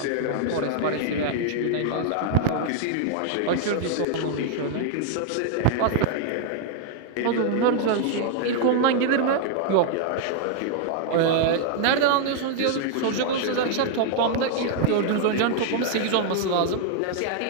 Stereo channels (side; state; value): both; different; correlation 0.00